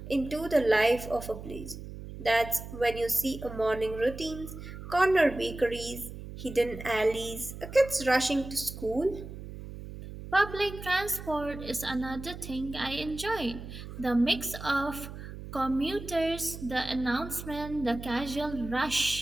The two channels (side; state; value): right; noise; hum, 11 dB below the sound